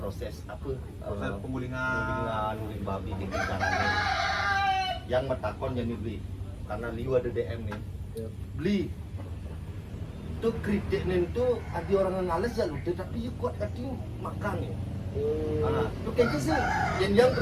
apa? Proses Penggulingan guling babi di caranya. Yang metakon jadi beli. Karena liu ada DM nih. Beli itu kritik nih itu ada orang yang ngales ya lu tapi you kuat kati makan ya. Itu kayaknya sih yang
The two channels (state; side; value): identical; both; correlation 1.00